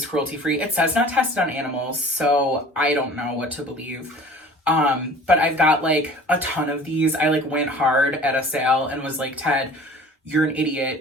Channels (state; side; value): normal; both; correlation 0.45